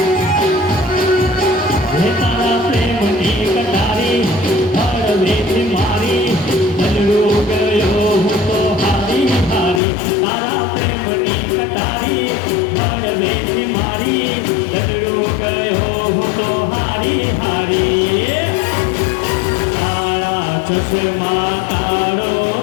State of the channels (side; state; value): right; drops out; at 9.8 s